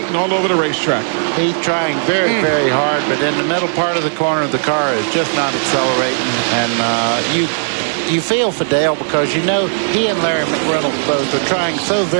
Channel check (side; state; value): left; silent; digital silence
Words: all over the racetrack. He's trying very, very hard, but in the middle part of the corner, the car is just not accelerating. And you feel for Dale because you know he and Larry McReynolds both are trying so